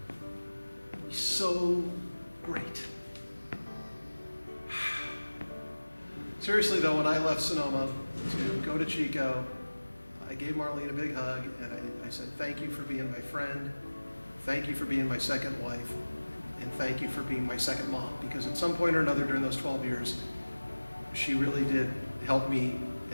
It would be so great. Seriously though, when I left Sonoma to go to Chico, I gave Marlene a big hug, and I said, thank you for being my friend, thank you for being my second wife, and thank you for being my second mom, because at some point or another during those 12 years, she really did help me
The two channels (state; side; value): inverted; both; correlation -1.00